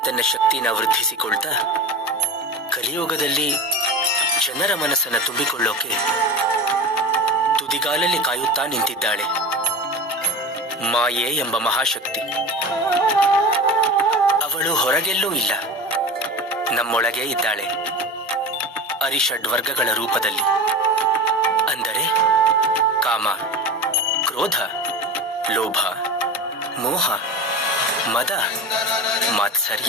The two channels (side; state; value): both; normal; correlation 0.28